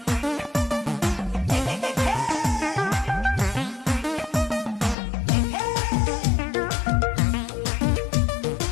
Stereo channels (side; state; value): right; drops out; at 5.0 s